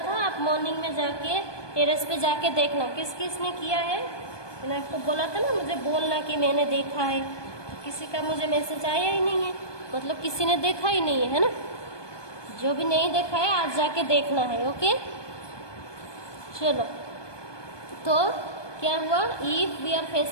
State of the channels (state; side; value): late; right; 1.2 ms